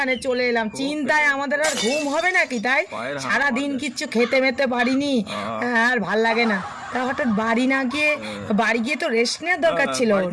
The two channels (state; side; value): identical; both; correlation 1.00